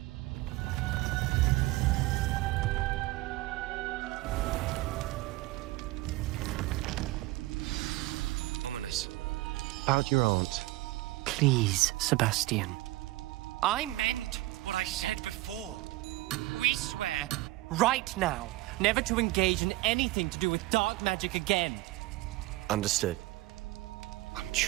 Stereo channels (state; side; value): quieter; left; 18.9 dB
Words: Ominous. About your aunt. Please, Sebastian. I meant what I said before. We swear, right now, never to engage in anything to do with dark magic again. Understood. I'm